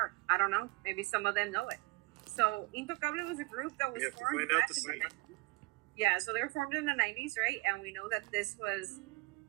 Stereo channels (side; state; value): left; quieter; 23.0 dB